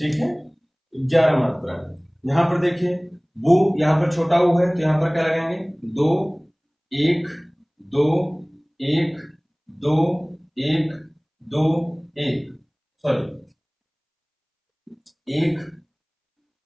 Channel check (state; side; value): identical; both; correlation 1.00